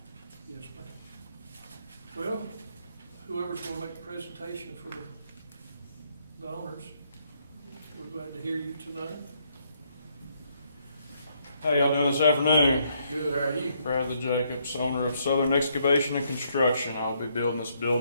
Yes, ma'am. Well, whoever's going to make the presentation for the honors, we're glad to hear you tonight. How y'all doing this afternoon? Good, how are you? Bradley Jacobs, owner of Southern Excavation and Construction. I'll be building this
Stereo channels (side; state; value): both; inverted; correlation -0.72